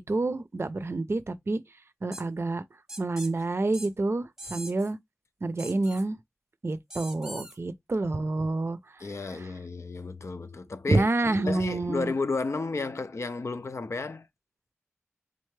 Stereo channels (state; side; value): normal; both; correlation 0.90